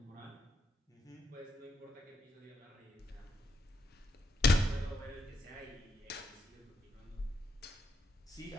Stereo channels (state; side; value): normal; both; correlation 0.80